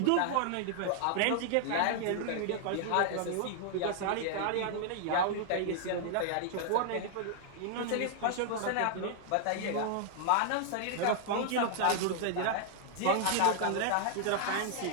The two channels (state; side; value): different; both; correlation 0.00